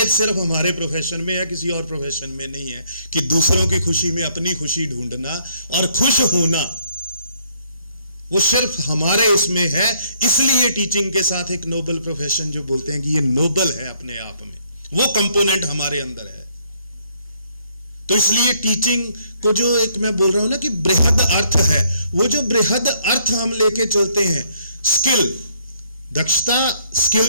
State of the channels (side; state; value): both; inverted; correlation -0.68